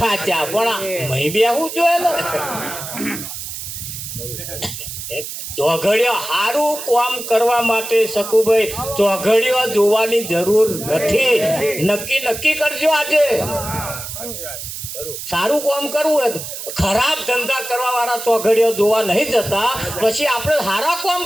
પણ મહી બેહવું જોઈએ ને ચોઘડિયો સારું કામ કરવા માટે શકુભાઈ ચોઘડિયો જોવાની જરૂર નથી નક્કી કરજો આજે સારું કામ કરવું હોય ખરાબ ધંધા કરવા વાળા ચોઘડિયો જોવા નહીં જતા પછી આપણે સારા કામ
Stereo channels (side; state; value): right; noise; hiss, 8 dB below the sound